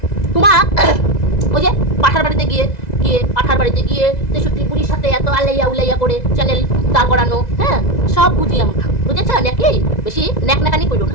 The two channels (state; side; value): late; right; 2.0 ms